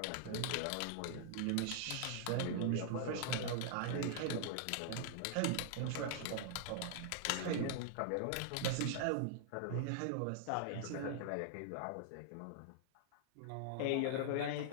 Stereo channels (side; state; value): both; different; correlation -0.01